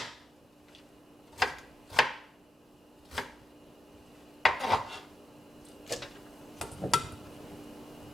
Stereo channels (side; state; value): both; normal; correlation 0.86